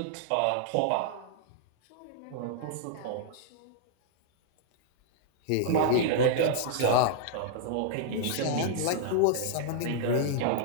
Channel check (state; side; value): different; both; correlation -0.01